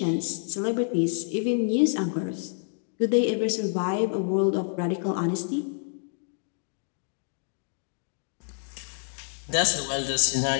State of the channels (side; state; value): right; silent; digital silence